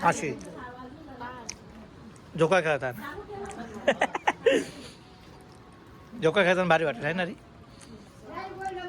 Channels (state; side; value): identical; both; correlation 1.00